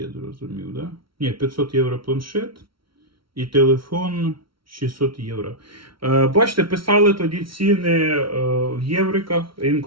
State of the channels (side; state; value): left; late; 0.74 ms